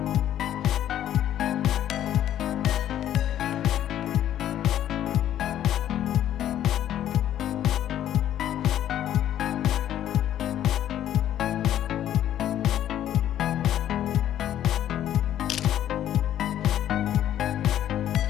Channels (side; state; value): right; quieter; 11.4 dB